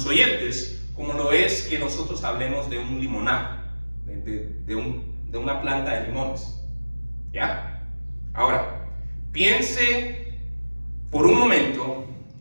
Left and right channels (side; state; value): both; inverted; correlation -1.00